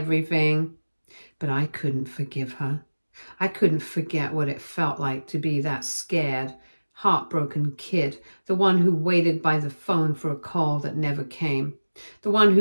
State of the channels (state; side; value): inverted; both; correlation -1.00